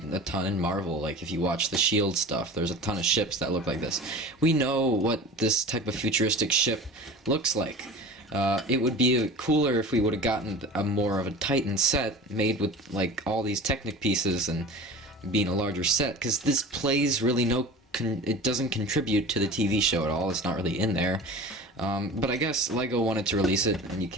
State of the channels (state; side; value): normal; both; correlation 0.36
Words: ton in Marvel. Like if you watch the S.H.I.E.L.D. stuff, there's a ton of ships that look like this. We know what this type of futuristic ship looks like. It would be cooler if we would have gotten more of a Titan set made with like all these Technic pieces and being a larger set, because this plays really it doesn't contribute to the TV show at all. It's not really in there. But I guess LEGO wanted to release it, and you